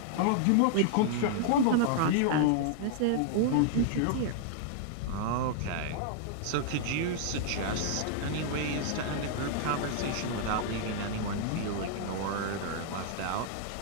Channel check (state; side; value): different; both; correlation -0.01